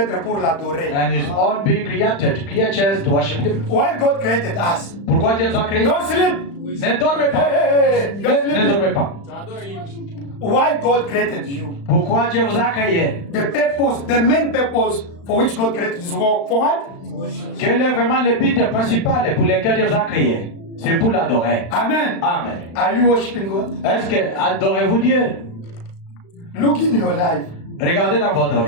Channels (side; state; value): right; late; 35 ms